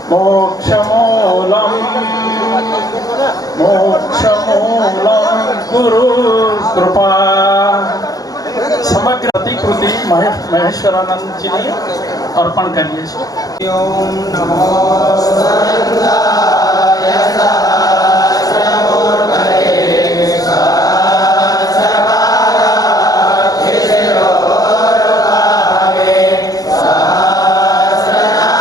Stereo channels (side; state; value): right; late; 0.18 ms